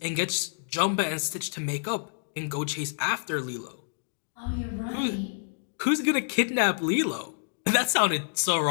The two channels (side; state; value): right; silent; digital silence